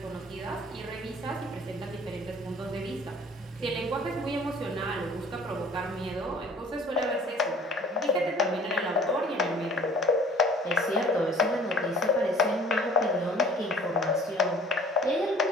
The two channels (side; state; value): both; normal; correlation 0.51